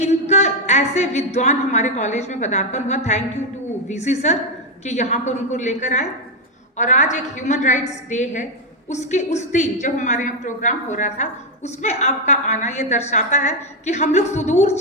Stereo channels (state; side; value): normal; both; correlation 0.04